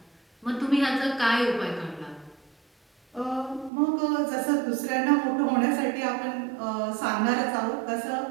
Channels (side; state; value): left; drops out; at 3.7 s